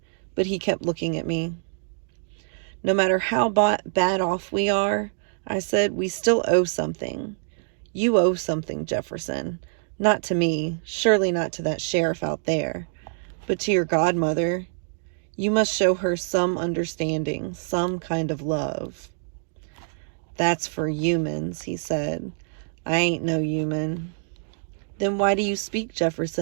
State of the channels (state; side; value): silent; left; digital silence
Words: but he kept looking at me. No matter how bad off we are, I said, we still owe something. You owe something, Jefferson. Not to me, surely not to that sheriff out there, but to your godmother. You must show her some understanding, some kind of love. That's for humans, he said. I ain't no human. Then why do you speak,